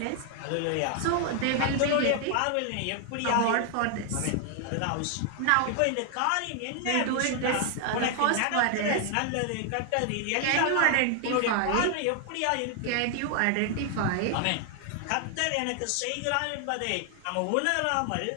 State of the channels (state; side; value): different; both; correlation 0.00